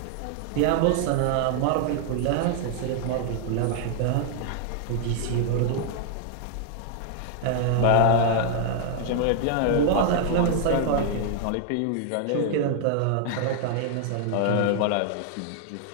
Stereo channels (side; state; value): both; different; correlation 0.00